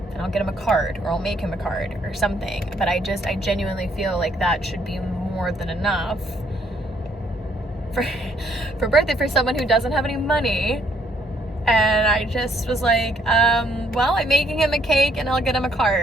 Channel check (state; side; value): normal; both; correlation 0.67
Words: and I'll get him a card, or I'll make him a card or something. But I genuinely feel like that should be more than enough for birthday for someone who doesn't have any money. And I just was like, well, I'm making him a cake and I'll get him a